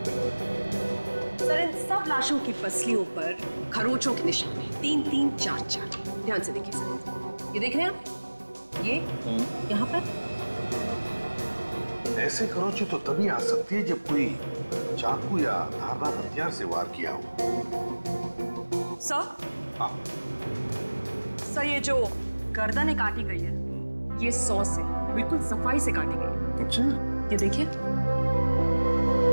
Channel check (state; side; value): inverted; both; correlation -1.00